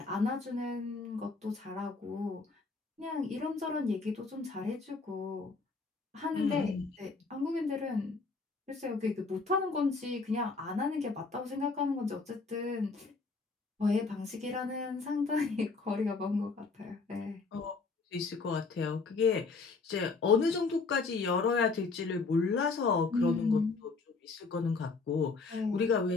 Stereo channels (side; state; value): right; quieter; 4.2 dB